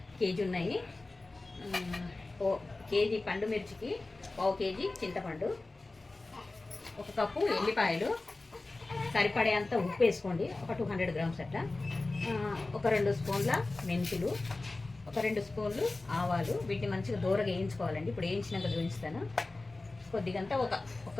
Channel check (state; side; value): quieter; right; 3.2 dB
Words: కేజీ ఉన్నాయి. కేజీ పండు మిర్చికి 1/2 కేజీ చింతపండు, 1 కప్పు ఎల్లిపాయలు, సరిపడేంత ఉప్పు వేసుకోండి, ఒక 200 గ్రామ్స్ అట్లా, ఒక 2 స్పూన్ల మెంతులు, ఒక 2 స్పూన్లు ఆవాలు. వీటిని మంచిగా దూరగా వేయించుకోవాలండి. ఇప్పుడు వేయించినాక చూపిస్తాను. కొద్దిగంతా ఒక